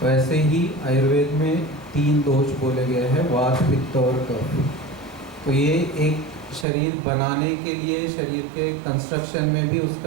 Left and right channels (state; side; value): drops out; left; at 6.7 s